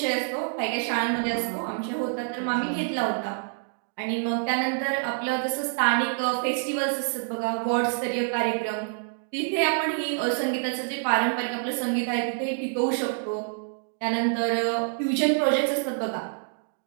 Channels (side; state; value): left; silent; digital silence